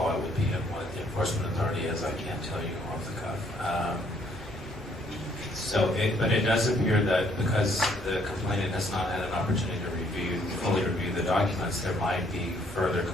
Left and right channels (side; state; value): both; normal; correlation 0.66